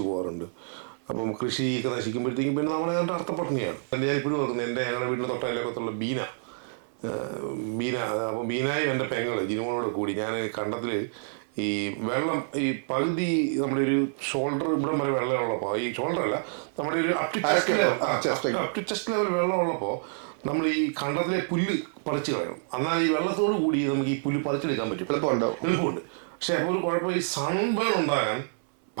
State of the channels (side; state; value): left; silent; 60 dB below the other